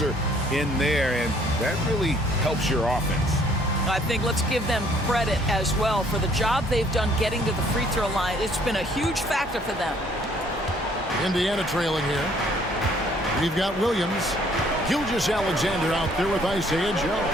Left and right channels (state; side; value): normal; both; correlation 0.61